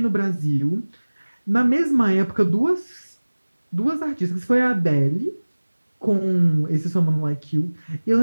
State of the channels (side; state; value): both; inverted; correlation -1.00